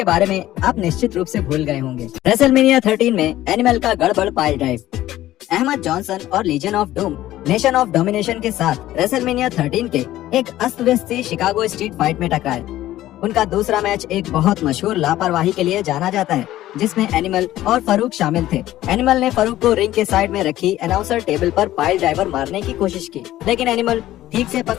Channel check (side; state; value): right; quieter; 14.5 dB